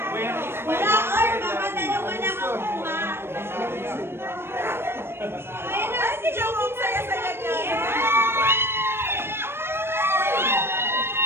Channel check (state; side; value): late; left; 0.12 ms